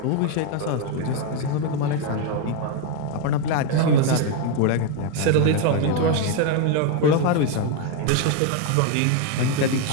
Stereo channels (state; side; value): different; both; correlation 0.01